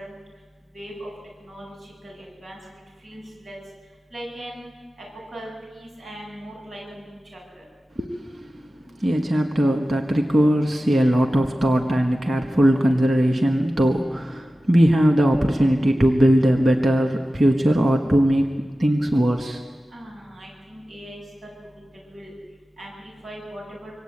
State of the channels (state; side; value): normal; both; correlation 0.95